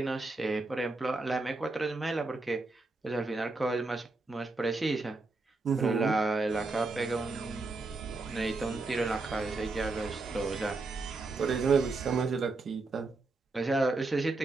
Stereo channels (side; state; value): left; quieter; 3.4 dB